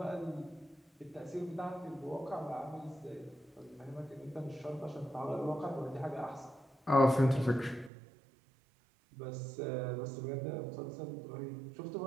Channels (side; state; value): left; drops out; at 7.9 s